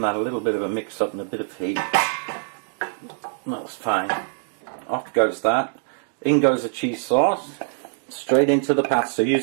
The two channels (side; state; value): left; silent; digital silence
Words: that a little bit of a mix up and a bit of heat. That's fine. Off goes that. In goes the cheese sauce. Straight into the pasta.